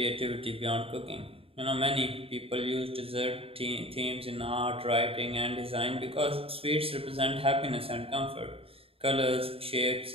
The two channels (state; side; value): late; left; 0.27 ms